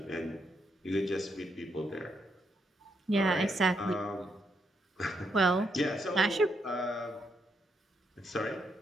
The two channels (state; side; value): normal; both; correlation 0.78